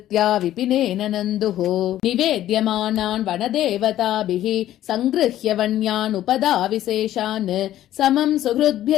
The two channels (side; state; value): right; quieter; 12.9 dB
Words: विपिनेन नन्दुः निवेद्यमानान् वनदेवताभिः सङ्गृह्य वन्यान् उपदाविशेषान् समम् सुहृद्भ्य